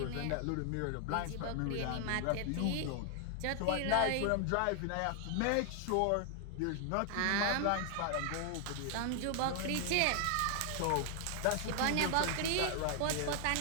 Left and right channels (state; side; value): different; both; correlation 0.00